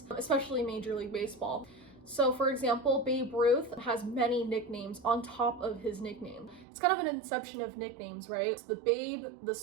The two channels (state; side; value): drops out; left; at 6.7 s